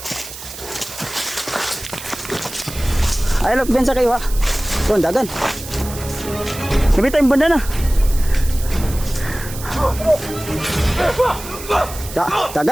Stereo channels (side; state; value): right; noise; hiss, 12 dB below the sound